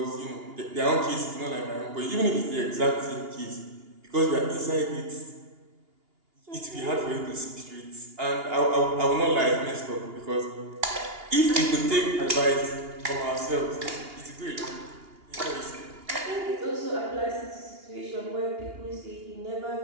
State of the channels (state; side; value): late; left; 2.8 ms